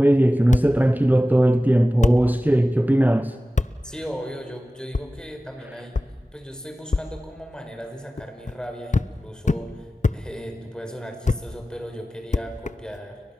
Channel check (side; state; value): both; normal; correlation 0.96